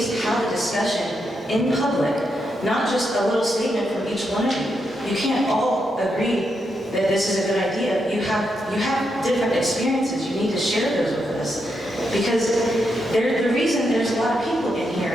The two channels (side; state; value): both; normal; correlation 0.82